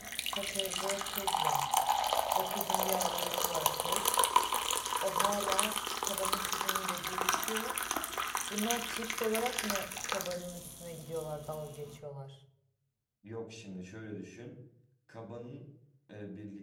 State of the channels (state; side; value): identical; both; correlation 1.00